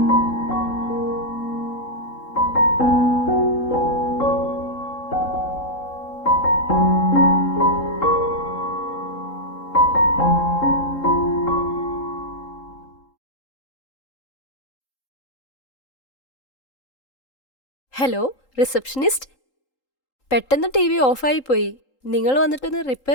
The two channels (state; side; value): late; right; 3.8 ms